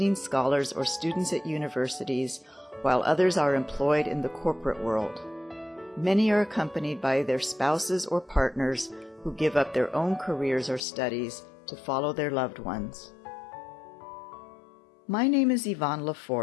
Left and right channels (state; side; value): drops out; right; at 10.9 s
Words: scholars, or students at universities, while others are employed in the corporate world. Many are accompanied by their spouses or partners who give up their own careers or studies to follow their loved ones. My name is Yvonne